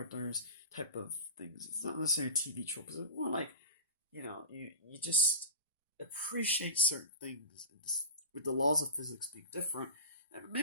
type of things. It's not necessarily TV tropes. It's more like, you just appreciate certain things with the laws of physics being different. And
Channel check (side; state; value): both; inverted; correlation -0.31